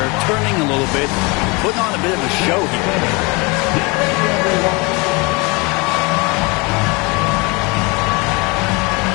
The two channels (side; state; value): right; quieter; 27.6 dB